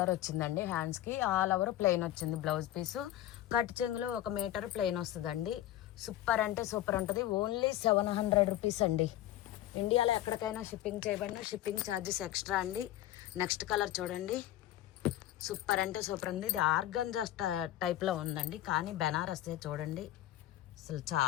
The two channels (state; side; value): quieter; right; 13.6 dB